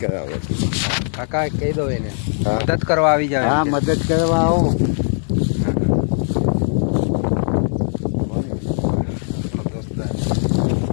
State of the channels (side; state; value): right; silent; digital silence